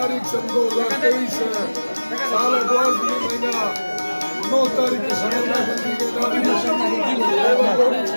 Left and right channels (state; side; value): inverted; both; correlation -1.00